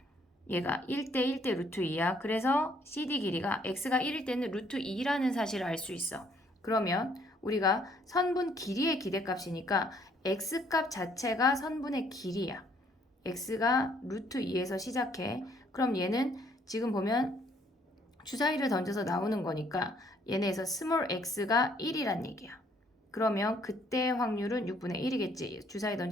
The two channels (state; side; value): normal; both; correlation 0.65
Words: 얘가 1대 1대 루트 2야. 그래서 CD 길이가 x가 1일 때는 루트 2라는 사실을 알 수 있어. 그러면 우리가 선분 길이의 기대값이니까 x값 자체가 선분의 길이야. x가 루트 2에서 시작해. 그럼 얘는 지금 보면 주사위를 던져서 나오는 거니까 얘네에서 스몰 x가 1이란 얘기야. 그러면 그때 확률은 6분의 1이겠지. 주사위